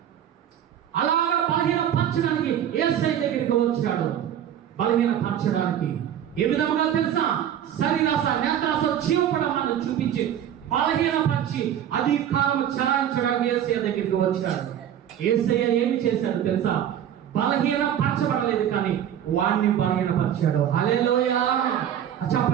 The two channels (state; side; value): quieter; left; 10.1 dB